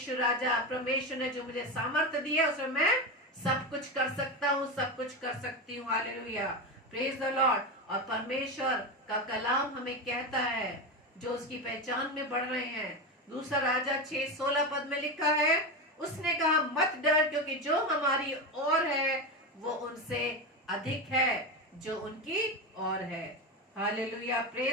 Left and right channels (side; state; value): both; normal; correlation 0.17